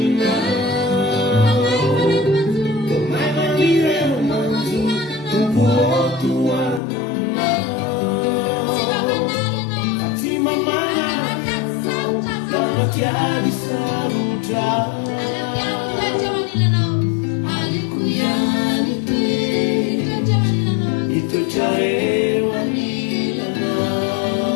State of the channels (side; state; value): right; drops out; at 6.8 s